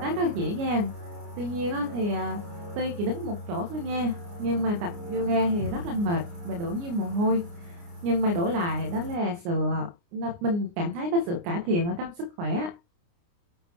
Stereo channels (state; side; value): late; left; 29 ms